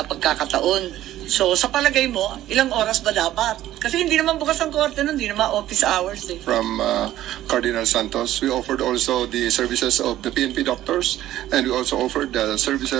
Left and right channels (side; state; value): left; quieter; 13.6 dB